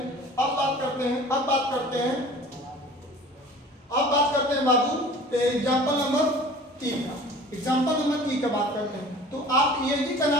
अब बात करते हैं बाबू एग्जाम्पल नंबर 3 का। एग्जाम्पल नंबर 3 का बात करते हैं। तो आप एजी का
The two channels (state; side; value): normal; both; correlation 0.44